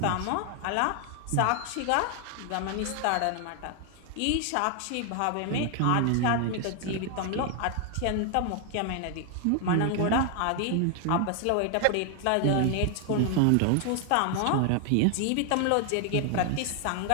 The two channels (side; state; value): both; different; correlation 0.00